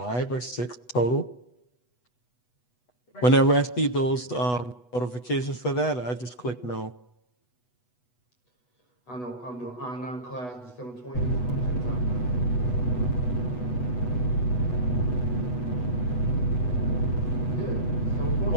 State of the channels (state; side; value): late; right; 8.1 ms